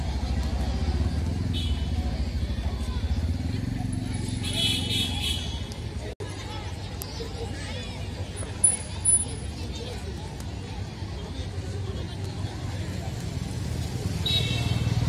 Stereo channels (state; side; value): identical; both; correlation 1.00